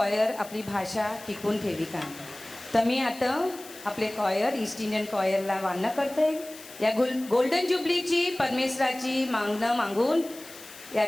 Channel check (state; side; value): noise; left; hiss, 17 dB below the sound